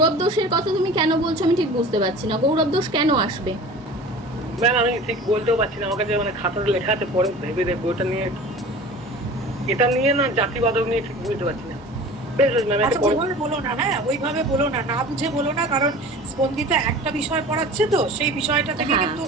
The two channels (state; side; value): normal; both; correlation 0.39